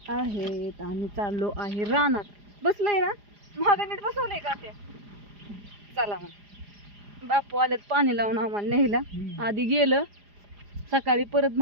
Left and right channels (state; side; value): late; left; 4.9 ms